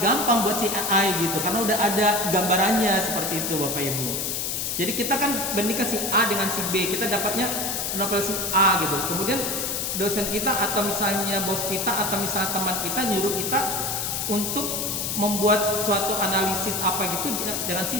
gampang buat si AI gitu, karena udah ada gambarannya seperti itu Bapak Ibu. Jadi kita kan bandingkan si A dengan si B, kita dapatnya novel si A gitu. Kemudian dosen kita atau misalnya bos kita atau misalnya teman kita nyuruh kita untuk membuat suatu analisis apa gitu dengan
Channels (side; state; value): left; noise; hiss, 1 dB below the sound